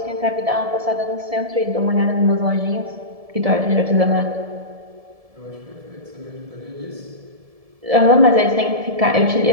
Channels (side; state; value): left; late; 1.7 ms